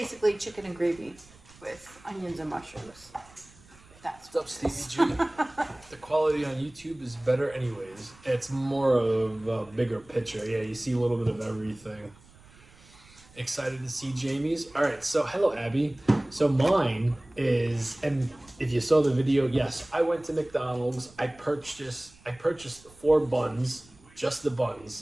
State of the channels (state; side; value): noise; right; rumble, 25 dB below the sound